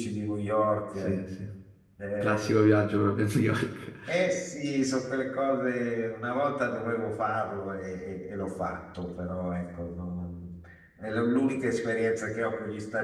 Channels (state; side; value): identical; both; correlation 1.00